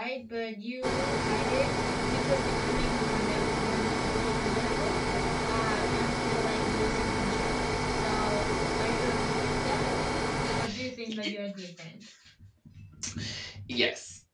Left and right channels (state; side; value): identical; both; correlation 1.00